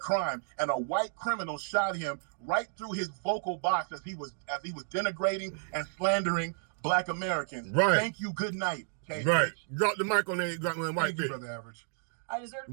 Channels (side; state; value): left; silent; 57 dB below the other